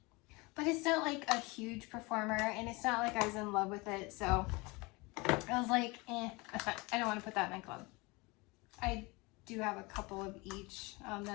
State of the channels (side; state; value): right; quieter; 25.5 dB